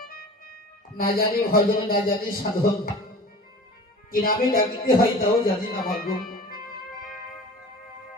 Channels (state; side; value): normal; both; correlation 0.40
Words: না জানি ভজন না জানি সাধন, কি নামে ডাকিতে হয় তাও জানি না ভাগ্য।